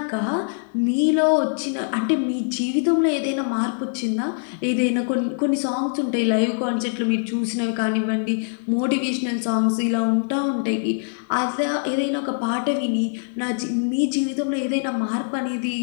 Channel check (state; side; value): silent; right; 59 dB below the other